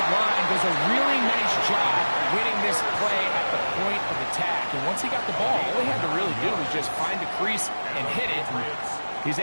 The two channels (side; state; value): both; inverted; correlation -1.00